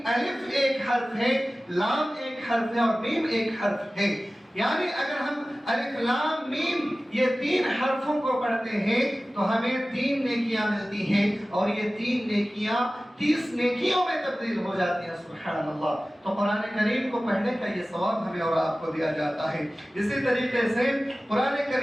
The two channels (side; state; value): both; normal; correlation 0.97